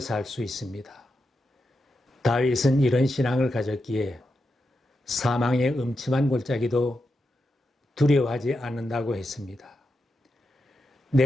살 수 있습니다. 다윗은 이런 신앙을 가졌기에 사망의 음침한 골짜기도 두려워하지 않는다고 했습니다.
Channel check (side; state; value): both; normal; correlation 0.87